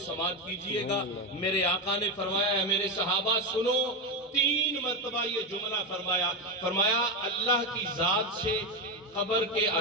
سماعت کیجئے گا۔ میرے آقا نے فرمایا، ہے میرے صحابہ سنو، 3 مرتبہ یہ جملہ فرمایا اللہ کی ذات سے قبر کے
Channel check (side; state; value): both; normal; correlation 0.12